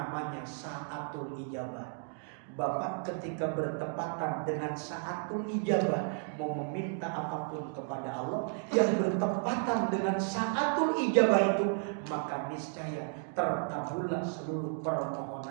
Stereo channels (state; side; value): silent; left; 56 dB below the other